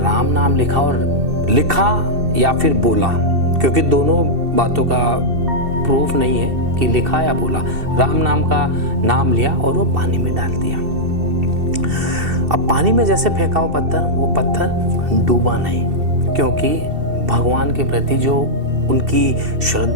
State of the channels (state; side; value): late; left; 2.7 ms